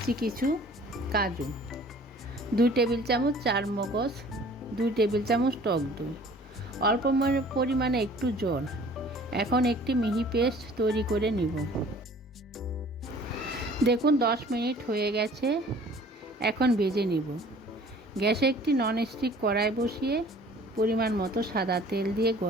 কিছু কাজু, 2 টেবিল চামচ চারমগজ, 2 টেবিল চামচ টক দই, অল্প পরিমাণে একটু জল। এখন একটি মিহি পেস্ট তৈরি করে নিব। দেখুন 10 মিনিট হয়ে গেছে। এখন ভেজে নিব। গ্যাসে একটি ননস্টিক কড়াই বসিয়ে পরিমাণ মতো সাদা তেল দিয়ে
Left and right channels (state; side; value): normal; both; correlation 0.51